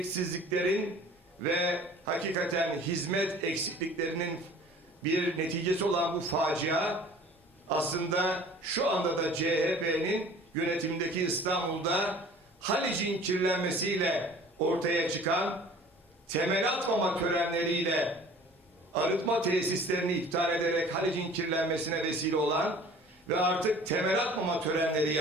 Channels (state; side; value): normal; both; correlation 0.47